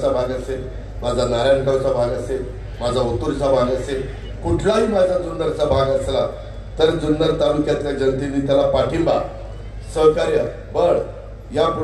भाग असेल, माझा नारायणगावचा भाग असेल, माझा ओतूरचा भाग असेल, कुठलाही माझा जुन्नरचा भाग असला तर जुन्नर तालुक्यातल्या जनतेने त्याला पाठिंबा, सहकार्य, बळ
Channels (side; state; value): both; identical; correlation 1.00